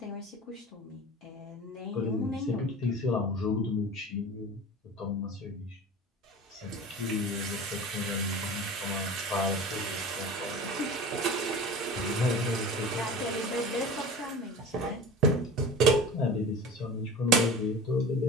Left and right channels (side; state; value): both; normal; correlation 0.36